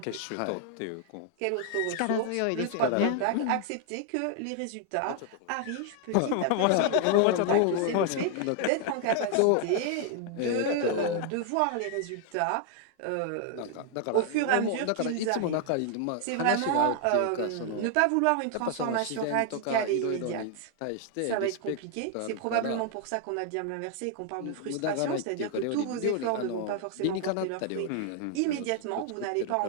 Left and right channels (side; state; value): both; different; correlation 0.00